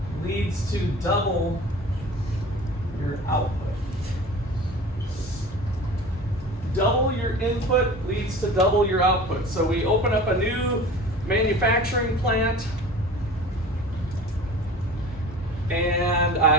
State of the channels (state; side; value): normal; both; correlation 0.39